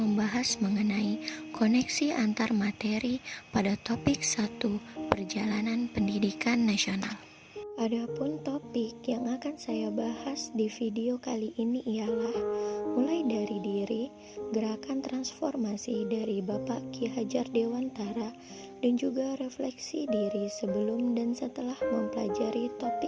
mengenai koneksi antar materi pada topik 1 Perjalanan Pendidikan Nasional. Adapun topik yang akan saya bahas di video kali ini ialah mulai dari diri, gerakan transformasi dari Bapak Ki Hajar Dewantara, dan juga refleksi diri sebelum dan setelah mempelajari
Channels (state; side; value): identical; both; correlation 1.00